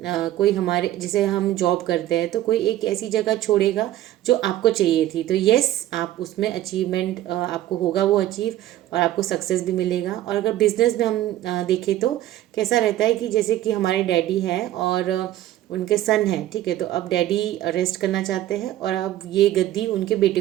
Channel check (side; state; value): left; quieter; 13.7 dB